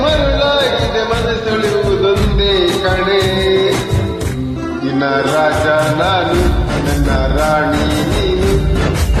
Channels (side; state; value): both; identical; correlation 1.00